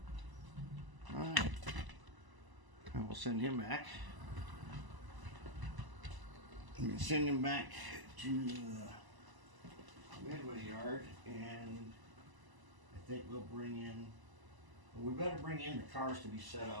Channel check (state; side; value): late; left; 1.0 ms